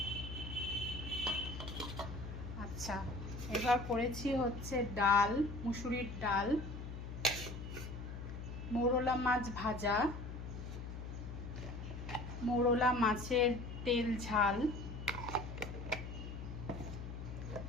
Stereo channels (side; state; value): left; noise; hum, 8 dB below the sound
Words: আচ্ছা, এবার করেছি হচ্ছে ডাল, মুসুরির ডাল, মোরলা মাছ ভাজা, মোরলা মাছের তেল ঝাল,